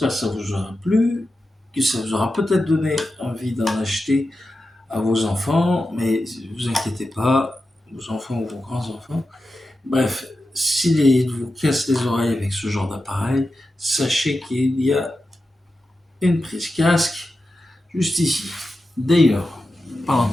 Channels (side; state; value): both; normal; correlation 0.91